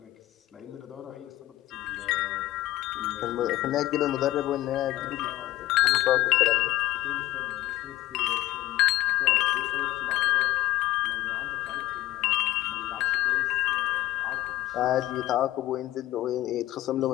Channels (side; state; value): right; quieter; 15.7 dB